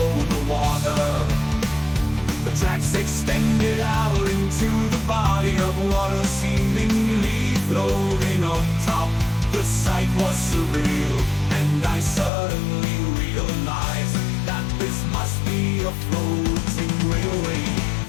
over the water. The tracks extended out into the body of water, seemingly floating on top. The sight was surreal, and I suddenly realized that this must be a floating railway.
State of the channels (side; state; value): right; drops out; at 12.3 s